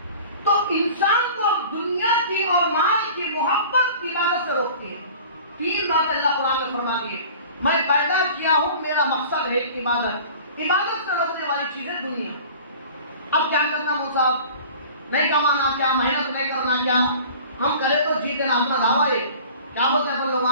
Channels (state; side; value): inverted; both; correlation -0.43